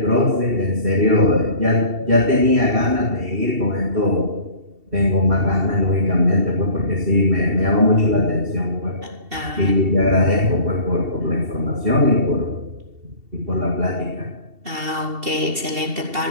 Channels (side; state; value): left; late; 2.7 ms